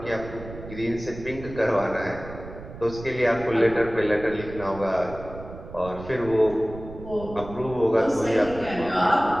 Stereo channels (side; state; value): right; noise; rumble, 13 dB below the sound